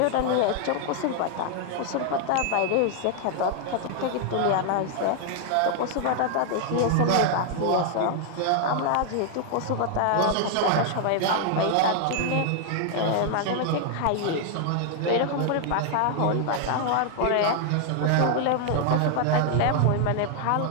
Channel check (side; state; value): both; different; correlation 0.00